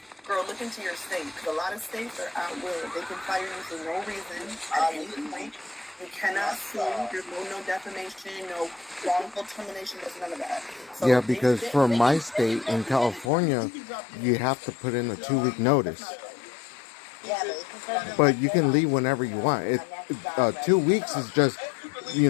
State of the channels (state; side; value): drops out; right; at 13.3 s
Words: girl, look into your state because a lot of states are out will. They can fire you for no reason at any point. You cannot sue. There's no defamation, no wrongful termination. There's none of that. So Yeah, because for my state in California, you have to put in a 2-week notice. Yeah, But you can leave whenever you want. 2 weeks is just,